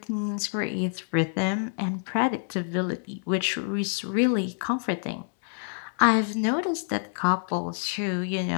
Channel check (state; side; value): silent; right; digital silence